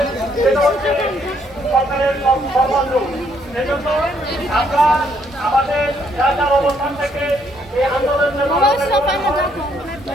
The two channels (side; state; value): both; normal; correlation 0.70